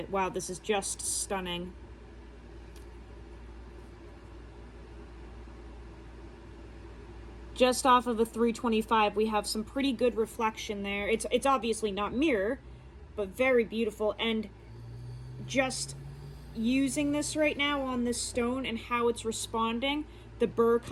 Wow, this is just stunning. Just off of a 325, we have some pretty good reflection there. It's obviously not mirror, but very beautiful. And just using this right now on this stone and how it's responding, the burr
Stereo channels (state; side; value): identical; both; correlation 1.00